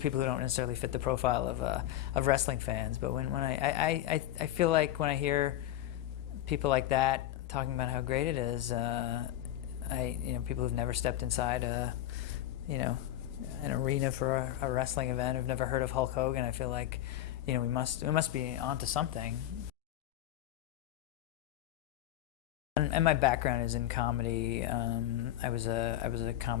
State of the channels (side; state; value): right; quieter; 13.1 dB